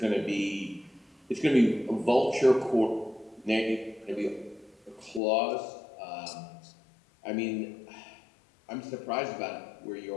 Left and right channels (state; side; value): drops out; right; at 5.2 s